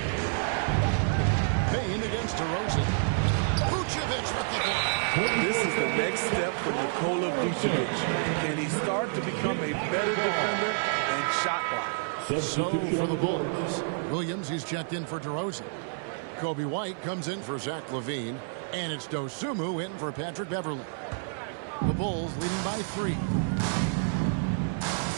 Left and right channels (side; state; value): left; silent; 59 dB below the other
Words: Payne against DeRozan. Vucevic with the block. This is the next step for Nikola Vucevic. Can he start to become a better defender and shot blocker? So for the Bulls, Williams, he's checked in for DeRozan. Kobe White comes in for Zach LaVine. And it's Dosunmu in for Patrick Beverley. The Bulls leading by 3.